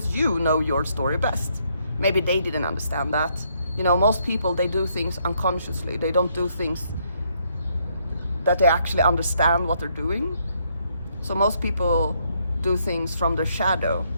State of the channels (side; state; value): both; inverted; correlation -0.72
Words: you know your story best. Maybe they didn't understand that. You know, most people, they do things unconsciously. They don't do things that they actually understand what they're doing. So most people do things from their shadow.